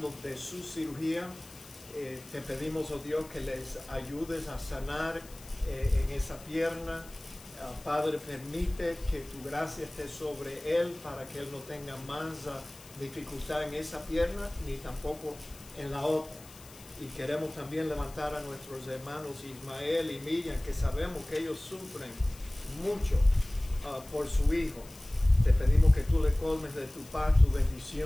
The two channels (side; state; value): left; noise; hiss, 20 dB below the sound